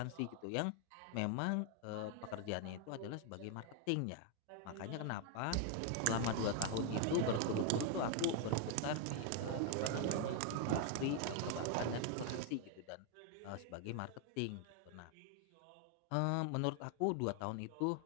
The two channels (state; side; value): different; both; correlation 0.00